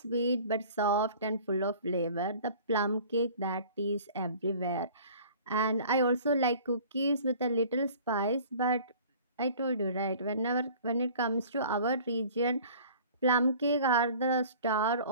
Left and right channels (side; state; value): both; inverted; correlation -0.47